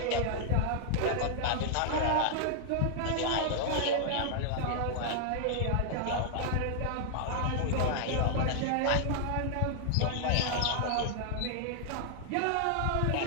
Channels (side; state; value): both; different; correlation -0.01